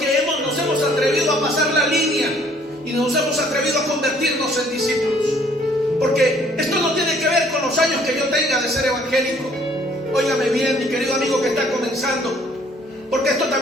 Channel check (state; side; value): normal; both; correlation 0.60